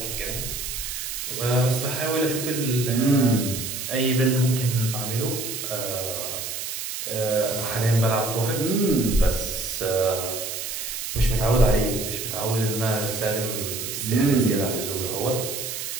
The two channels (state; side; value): noise; right; hiss, 5 dB below the sound